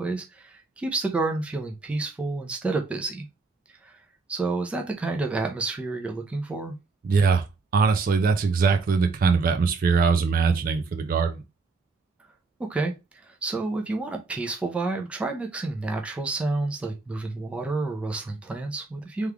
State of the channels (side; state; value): left; quieter; 4.0 dB